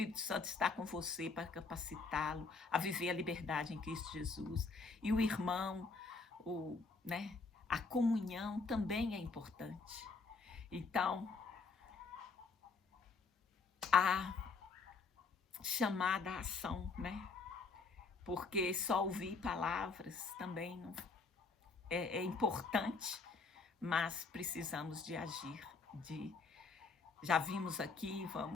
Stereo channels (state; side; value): quieter; right; 4.4 dB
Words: Santo está com você para capacitá-lo a viver a liberdade em Cristo Jesus. E o irmão, a comunhão também é importante. Então, a chamada à ação, né? Porque só ouvir palavras também não é importante, mas precisamos de agir, Já vimos aqui,